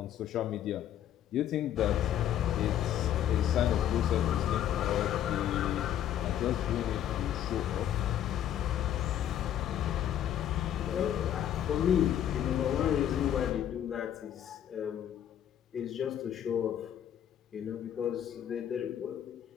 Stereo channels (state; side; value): quieter; right; 10.6 dB